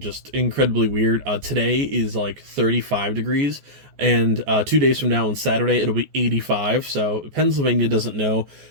just incredibly weird. Today is like 35 degrees, and 2 days from now on Saturday it'll be 85. So Pennsylvania doesn't know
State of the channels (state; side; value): late; left; 14 ms